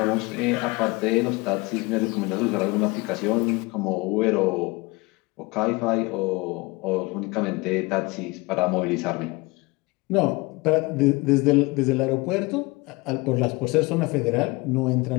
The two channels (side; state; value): right; quieter; 24.3 dB